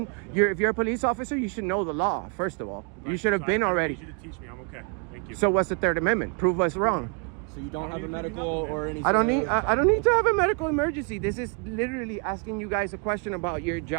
If you're a police officer, you should know the law. First of all, you Right, should have so been I already. need you to teach me. I'm okay. Thank you. So what's the Third Amendment? Prove us wrong. So you don't I have don't a need to do medical nothing, man. or anything? I don't need to have a medical emergency. This is literally asking you guys a question about your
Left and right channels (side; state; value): left; quieter; 37.1 dB